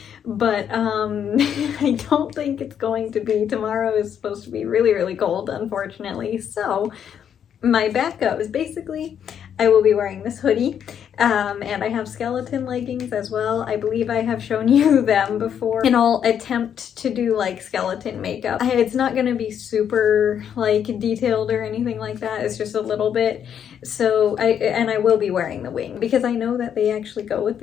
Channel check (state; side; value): quieter; right; 8.7 dB